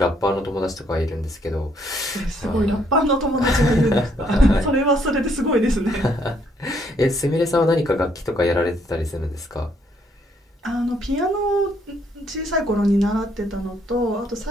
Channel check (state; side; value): normal; both; correlation 0.69